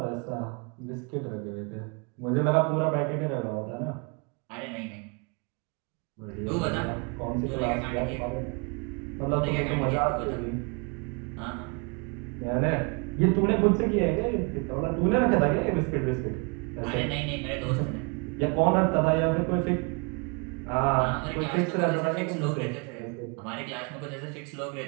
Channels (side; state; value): left; quieter; 33.1 dB